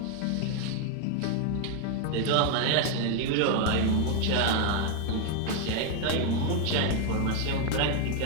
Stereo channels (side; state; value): both; different; correlation 0.01